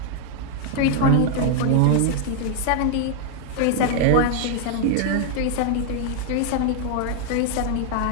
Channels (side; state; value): both; different; correlation 0.00